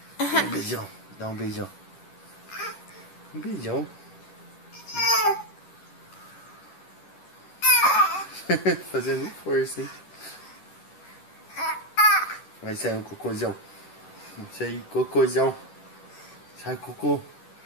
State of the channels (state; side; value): late; right; 11 ms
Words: Um beijão, dá um beijão. Um beijão. Fazendo força, hein? Vai sair um cocôzão. Vai sair cocôzão. Sai cocô.